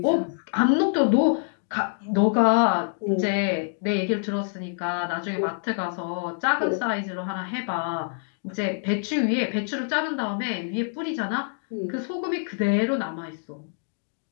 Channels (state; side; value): silent; right; digital silence